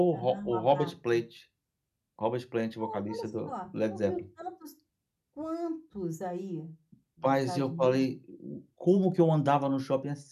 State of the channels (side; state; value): both; identical; correlation 1.00